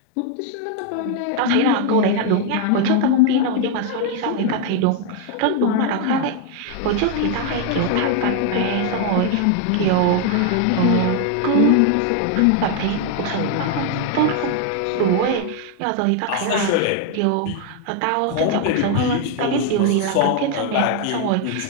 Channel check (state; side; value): different; both; correlation 0.00